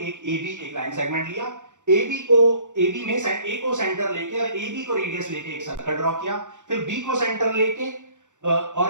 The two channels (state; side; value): late; left; 0.85 ms